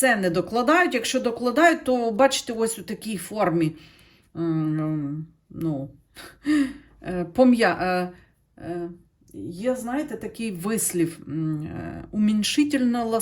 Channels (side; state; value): both; identical; correlation 1.00